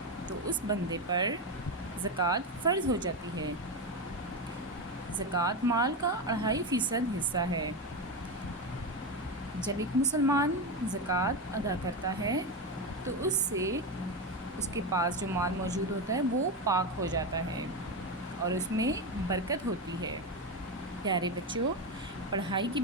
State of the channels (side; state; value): both; normal; correlation 0.15